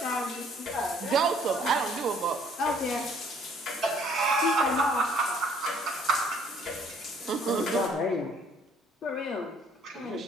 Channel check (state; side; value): normal; both; correlation 0.60